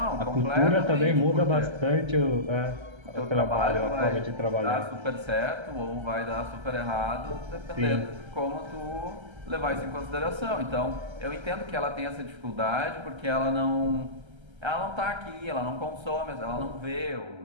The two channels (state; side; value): late; left; 1.3 ms